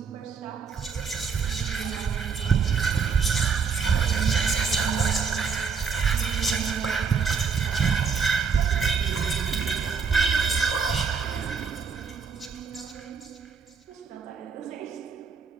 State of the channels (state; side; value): quieter; left; 5.9 dB